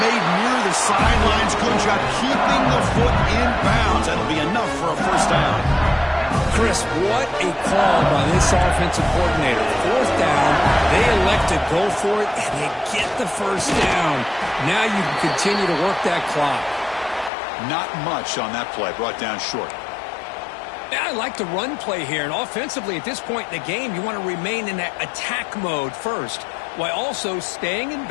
near the sidelines. Good job keeping the foot in bounds. That'll be enough for a 1st down. Chris, what a call by this offensive coordinator. 4th down, they elect to go for it, and they get the 1st down. Now you can continue to work that clock. Not much on that play, brought down short. Yeah, I like the run play here, and offensively at this point in the game, you want to remain in that attack mode first, while also staying in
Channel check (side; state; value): right; drops out; at 17.3 s